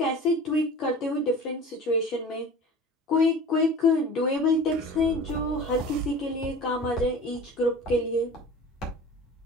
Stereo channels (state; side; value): normal; both; correlation 0.39